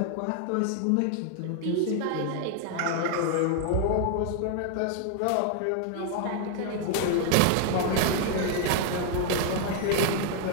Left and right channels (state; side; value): different; both; correlation 0.00